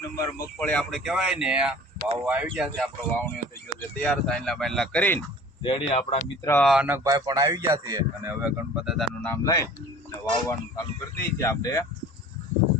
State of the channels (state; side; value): normal; both; correlation 0.45